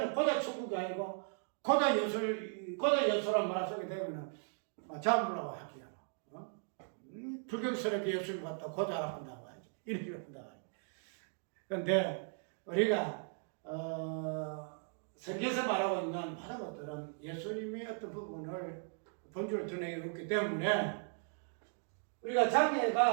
고자 천국이 아니고 고자 예수란 말을 쓰게 되면은 자물라고 할게요. 불경스럽게 예수님 갖다 고자라고 한다고 하지. 이렇게 한다고 하지. 그런데 우리가 성경에서 말하고 있는 많은 것들은 예수님의 어떤 부분을 본질을 드러내기 때문에 우리가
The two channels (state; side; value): silent; left; 53 dB below the other